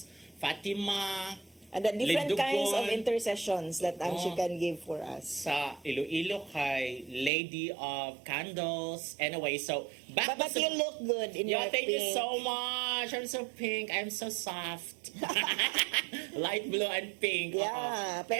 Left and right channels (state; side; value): drops out; left; at 7.3 s